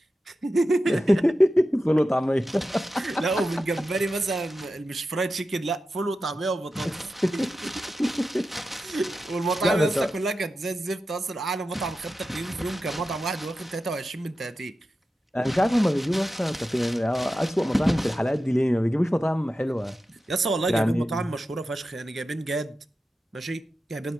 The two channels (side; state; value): both; normal; correlation 0.92